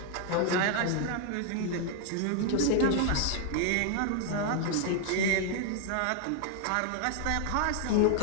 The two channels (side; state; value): both; different; correlation 0.00